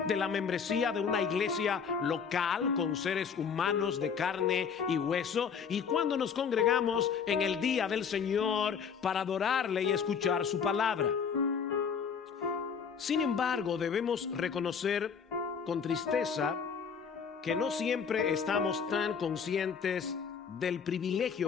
de la membresía de una iglesia local con seres humanos de carne y hueso, y cuando nos congregamos en el día del Señor para adorarle y escuchar su palabra. Sin embargo, debemos reconocer con tristeza que no siempre estamos tan conscientes del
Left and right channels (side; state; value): right; quieter; 6.5 dB